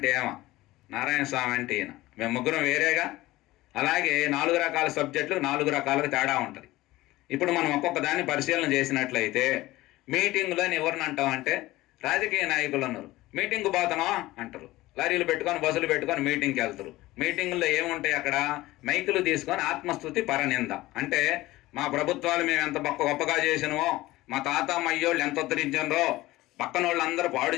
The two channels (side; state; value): right; quieter; 18.0 dB